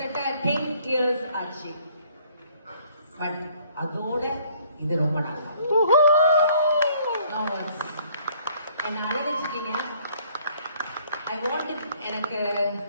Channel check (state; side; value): inverted; both; correlation -0.61